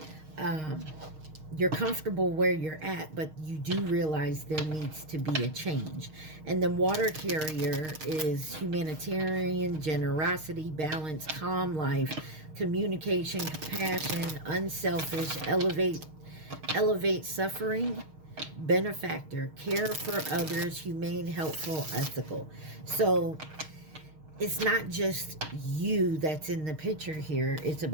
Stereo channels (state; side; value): late; left; 6.4 ms